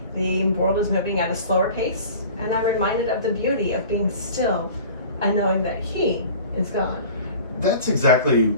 the world is moving at a slower pace, and I'm reminded of the beauty of being still and knowing that He is God. That's exactly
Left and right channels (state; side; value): inverted; both; correlation -0.42